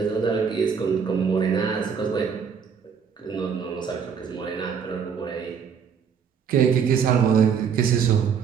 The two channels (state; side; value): quieter; left; 6.9 dB